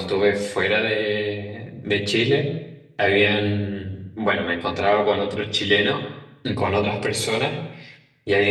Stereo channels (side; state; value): both; identical; correlation 1.00